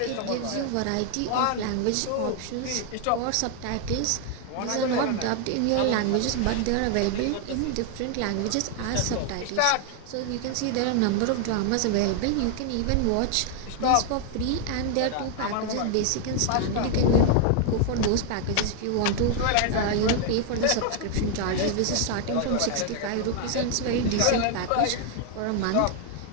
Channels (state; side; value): different; both; correlation 0.00